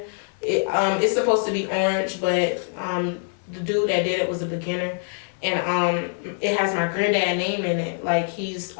It's supposed to be orange, but the dude that did it was a beginner. And it has my granddad name in it. Like he's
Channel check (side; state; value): right; silent; digital silence